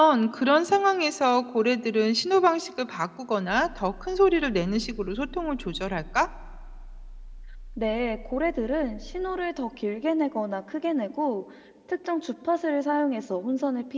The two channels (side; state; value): both; identical; correlation 1.00